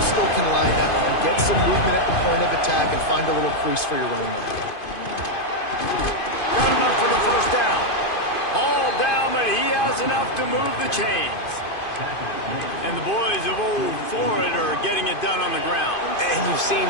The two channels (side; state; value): right; late; 2.5 ms